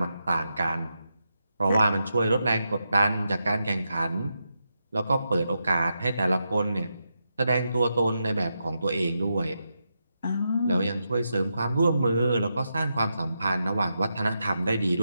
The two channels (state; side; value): inverted; both; correlation -0.86